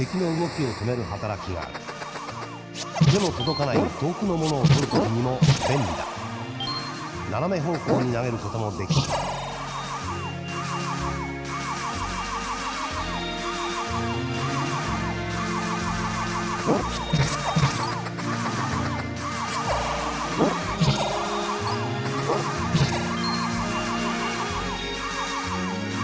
の動きを止める働きがある。手の届かない遠くのものを取るときにも便利だ。斜め方向に投げることもできる。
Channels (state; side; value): identical; both; correlation 1.00